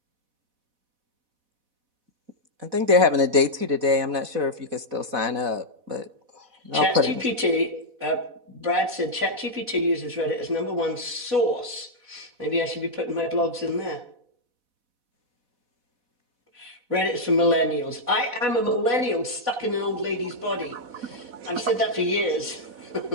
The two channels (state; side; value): late; left; 4.1 ms